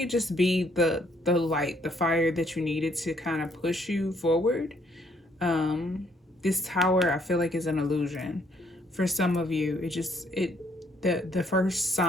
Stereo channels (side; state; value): both; normal; correlation 0.68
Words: just be the light, the fire that you needed to kind of push you forward. This Tower, I feel like, is an illusion. For some of you, the first